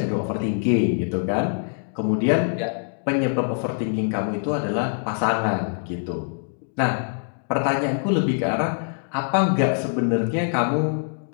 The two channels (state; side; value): silent; right; digital silence